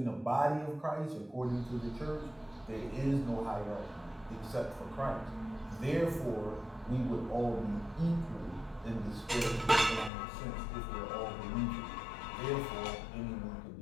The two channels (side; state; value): right; drops out; at 10.1 s